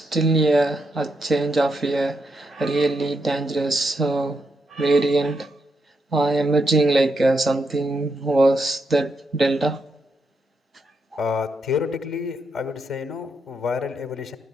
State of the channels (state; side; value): normal; both; correlation 0.81